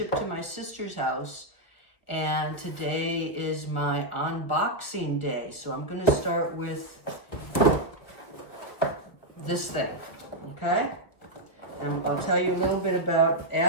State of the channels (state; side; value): late; right; 1.6 ms